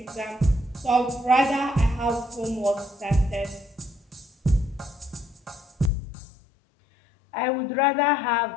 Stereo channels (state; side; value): drops out; right; at 5.9 s